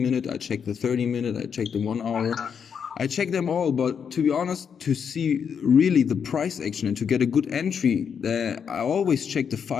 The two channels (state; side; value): quieter; right; 7.1 dB